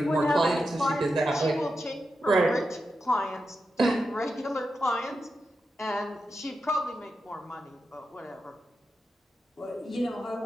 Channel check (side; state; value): both; normal; correlation 0.88